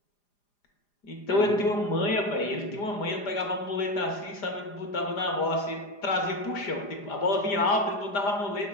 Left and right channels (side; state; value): right; late; 4.9 ms